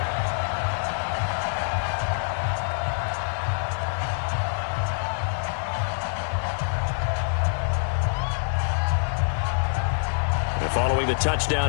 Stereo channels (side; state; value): right; silent; 61 dB below the other